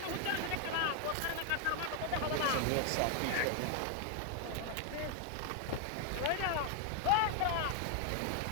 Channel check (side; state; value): both; different; correlation 0.01